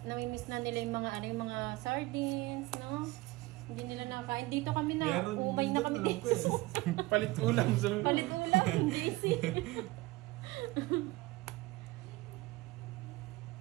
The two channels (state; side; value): quieter; left; 20.4 dB